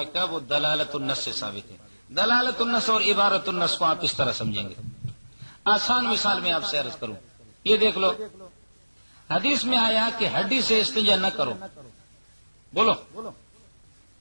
وہ دلالت النص سے ثابت ہے۔ دلالت النص اور عبارت النص کو آپ اس طرح سمجھیں گے۔ آسان مثال میں آپ سے عرض کروں، یہ دیکھ لو، حدیث میں آیا کہ ہڈی سے استنجا نہ کرو، بولو،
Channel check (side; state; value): both; inverted; correlation -1.00